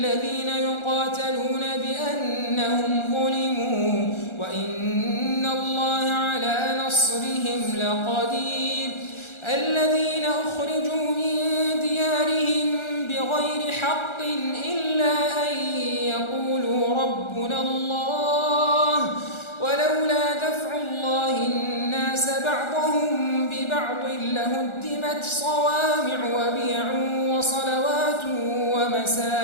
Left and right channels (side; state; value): right; late; 1.4 ms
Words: الذين يقاتلون بأنهم ظلموا وإن الله على نصرهم لقدير. الذين أخرجوا من ديارهم بغير حق إلا أن يقولوا ربنا الله ولولا دفع الله الناس بعضهم ببعض لهدمت صوامع وبيع وصلوات